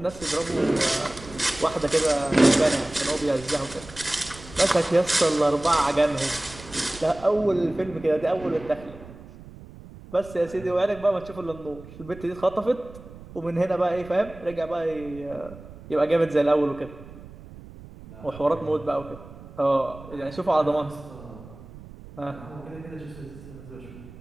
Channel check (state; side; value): noise; right; rumble, 17 dB below the sound